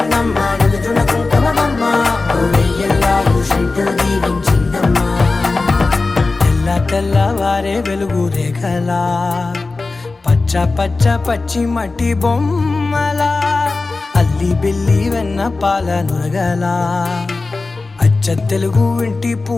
నిలుచున కుంకుమమ్మా వెయ్యల్లాలు శంకరు దీవించిందమ్మా తెల్ల తెల్లవారే వెలుగు రేఖలా పచ్చ పచ్చ పచ్చి మట్టి బొమ్మలా అల్లి బిల్లి వెన్న పాల నురగలా అచ్చ తెలుగు ఇంటి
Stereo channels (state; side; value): quieter; right; 3.6 dB